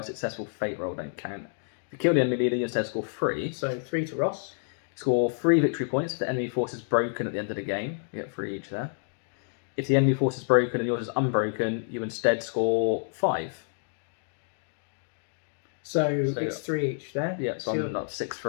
successful fate roll don't count. If you kill the enemy leader, you instead score 3. So 3 to Ross. Score 3 victory points if the enemy force is broken at the end of the game. You get 3 each there. If the enemy force is broken and yours is unbroken, you instead score 5. So it's 3 each there. Yeah, so I'm not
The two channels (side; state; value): right; silent; digital silence